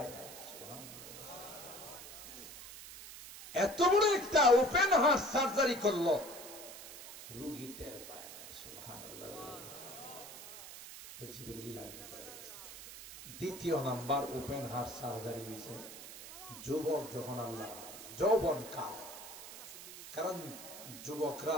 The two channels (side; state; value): right; noise; hiss, 13 dB below the sound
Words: না। এত বড় একটা ওপেন হার্ট সার্জারি করলো, রোগী টের পায় না। সুবহানাল্লাহ। জিবরিল আমিন বলে গেছে। দ্বিতীয় নাম্বার ওপেন হার্ট সার্জারি হয়েছে যুবক যখন আল্লাহ যৌবন কাল। কারণ যুবকরা